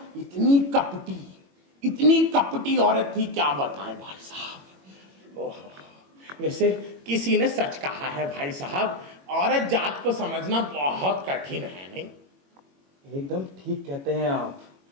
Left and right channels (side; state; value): left; late; 21 ms